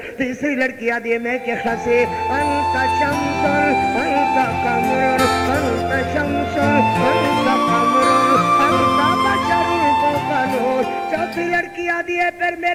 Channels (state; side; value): identical; both; correlation 1.00